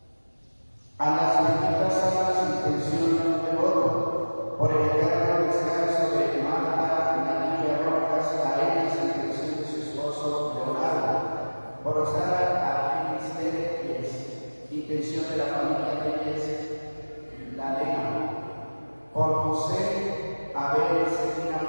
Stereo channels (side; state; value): both; inverted; correlation -1.00